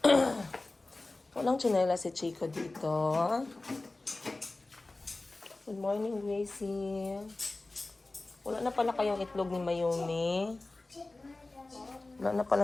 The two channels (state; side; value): quieter; right; 3.1 dB